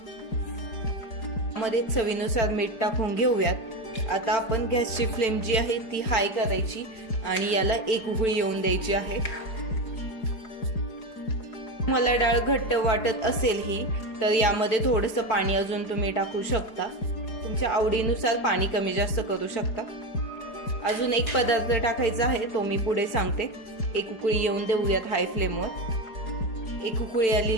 मध्ये चवीनुसार मीठ टाकून घेऊयात। आता आपण गॅसची फ्लेम जी आहे ती हाय करायची आणि याला एक उकळी येऊन द्यायची आहे। मला डाळ घट्ट वाटत असेल ही, तर यामध्ये थोडंसं पाणी अजून तुम्ही टाकू शकता, तुमच्या आवडीनुसार पाणी कमी जास्त करू शकता। अजून एक पदार्थ टाकायचा आहे, तो मी पुढे सांगते। एक उकळी येऊन देऊयात हाय फ्लेमवर। एक उकळी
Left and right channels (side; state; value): right; late; 4.8 ms